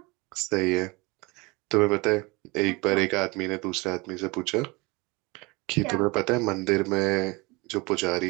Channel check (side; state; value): left; quieter; 25.3 dB